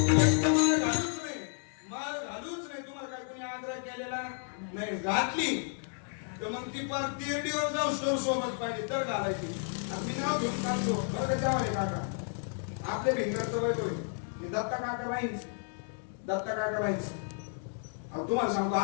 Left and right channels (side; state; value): right; silent; 56 dB below the other